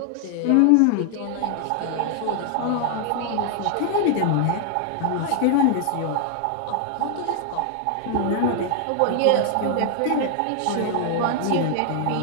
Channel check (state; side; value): different; both; correlation 0.00